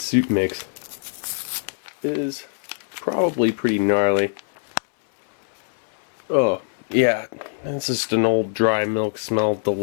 mix is probably pretty gnarly. Oh, yeah, it's just an old dry milk smell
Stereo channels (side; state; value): right; silent; 64 dB below the other